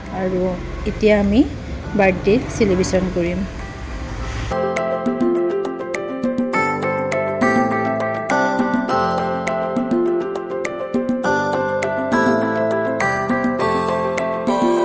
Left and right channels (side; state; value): both; identical; correlation 1.00